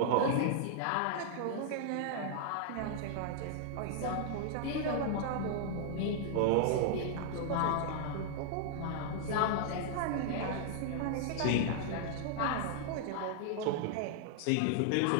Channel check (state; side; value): different; both; correlation -0.01